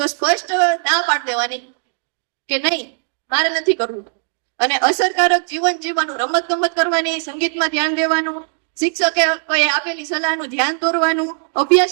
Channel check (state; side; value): silent; left; digital silence